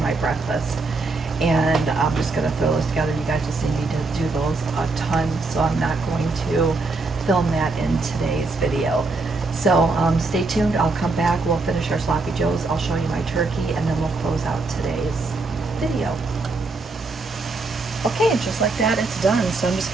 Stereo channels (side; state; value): left; quieter; 3.6 dB